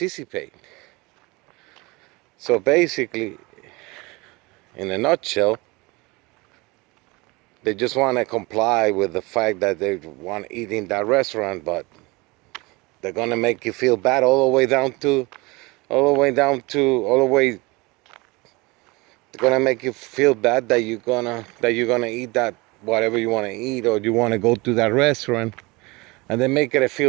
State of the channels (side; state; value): left; quieter; 24.6 dB